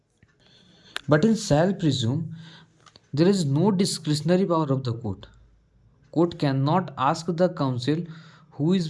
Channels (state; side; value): identical; both; correlation 1.00